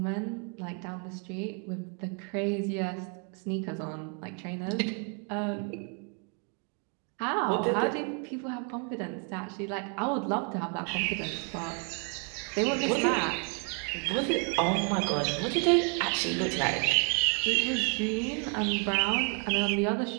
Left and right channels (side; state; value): left; quieter; 39.1 dB